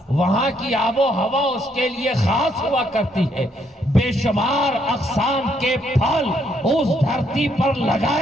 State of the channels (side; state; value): both; normal; correlation 0.72